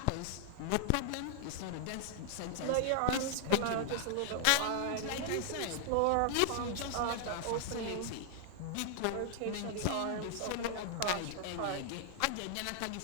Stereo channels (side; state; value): both; different; correlation 0.00